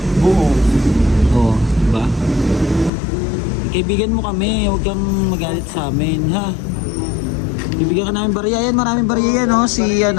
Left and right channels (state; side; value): drops out; right; at 2.9 s